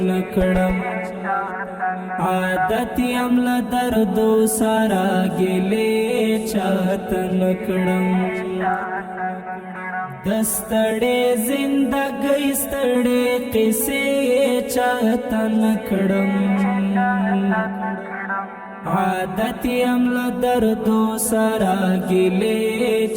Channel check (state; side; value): identical; both; correlation 1.00